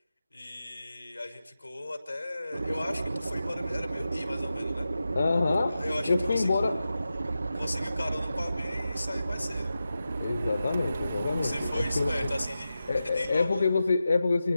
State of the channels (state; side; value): inverted; both; correlation -0.92